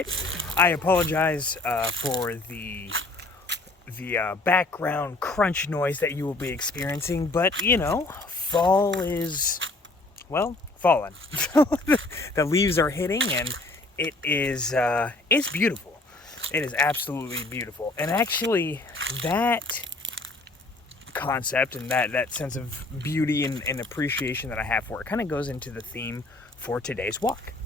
I apologize for the background crunch noise that you will be experiencing, but you know, fall is, well, fallen. The leaves are hitting, and it is it's beautiful. It is absolutely beautiful, and actually, that concept and that sense of beauty and appreciation that I have for it kind of goes into the theme for today's walk.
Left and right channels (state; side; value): quieter; right; 3.0 dB